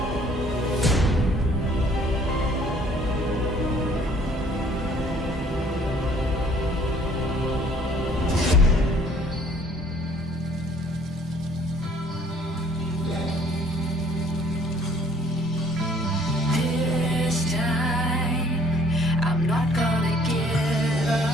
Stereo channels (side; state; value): both; normal; correlation 0.58